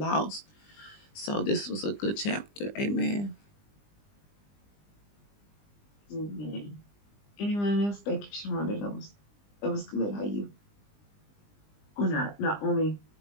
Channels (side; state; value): right; late; 20 ms